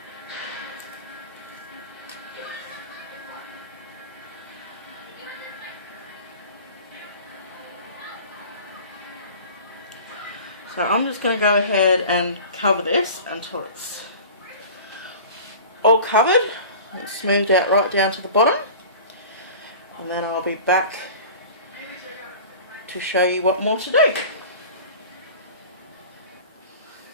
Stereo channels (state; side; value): inverted; both; correlation -0.39